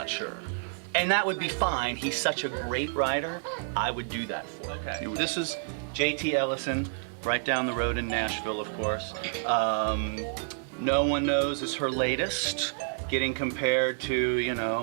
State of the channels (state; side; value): silent; left; digital silence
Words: sure. And that would be fine. He's such a great writer. I would do that for him. Okay. This is J.T. Ellison, right down the road in Nashville, of course. No One Knows is her latest, getting compared